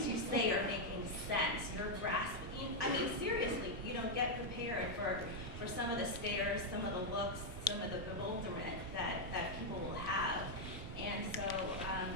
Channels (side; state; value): both; normal; correlation -0.01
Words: you say are making sense. You're grasping. I mean, seriously, get prepared for some of the stares, some of the looks, some of the bewilderment that people will have. And so